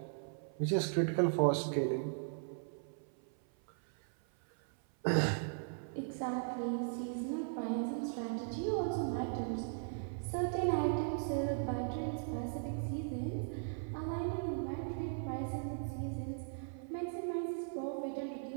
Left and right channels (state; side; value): silent; left; 52 dB below the other